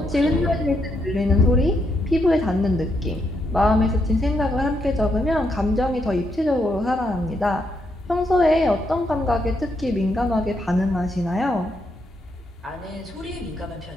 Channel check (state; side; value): normal; both; correlation 0.78